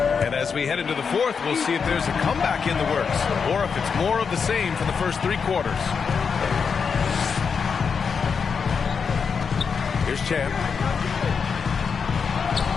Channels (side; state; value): right; quieter; 6.0 dB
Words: And as we head into the fourth, we'll see if there's a comeback in the works or if it's more of the same for the first 3 quarters. Here's Champ.